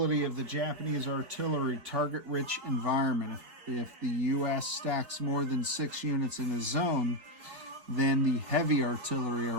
of the Japanese artillery, target-rich environment, if the U.S. stacks more than 6 units in a zone, then the heavy artillery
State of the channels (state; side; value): late; left; 4.5 ms